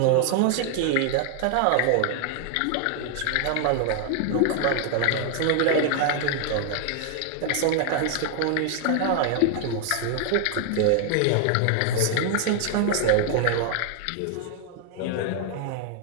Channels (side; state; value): both; different; correlation 0.00